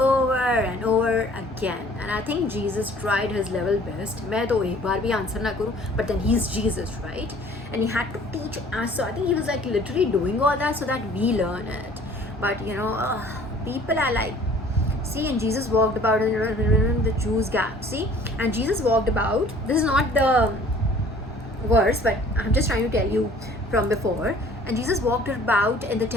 and over again, and I think Jesus tried his level best. मैं तो एक बार भी answer ना करूँ, but then he's Jesus, right? And he had to teach us. So I think he was like literally doing all that so that we learn it. But you know, people are like, see, and Jesus walked about in the Jews gap. See, and Jesus walked about. This is not the verse, but I'm just trying to tell you from before. And Jesus walked about in the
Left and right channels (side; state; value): both; normal; correlation 0.52